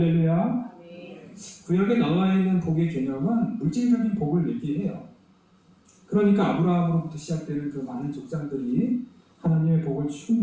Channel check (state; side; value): identical; both; correlation 1.00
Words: 구약에 나와 있는 복의 개념은 물질적인 복을 얘기해요. 그러니까 아브라함으로부터 시작되는 그 많은 족장들이 하나님의 복을